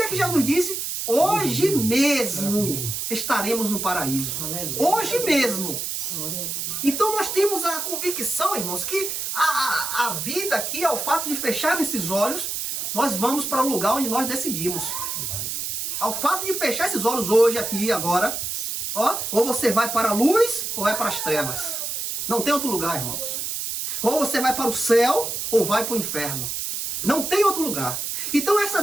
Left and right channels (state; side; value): noise; right; hiss, 3 dB below the sound